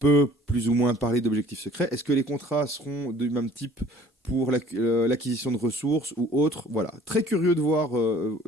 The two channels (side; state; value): both; normal; correlation 0.53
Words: plus ou moins parler d'objectifs secrets. Est-ce que les contrats seront du même type pour l'acquisition de ressources ou autres ? Voilà, très curieux